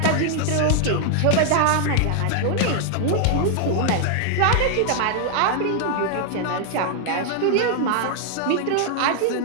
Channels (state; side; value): different; both; correlation 0.00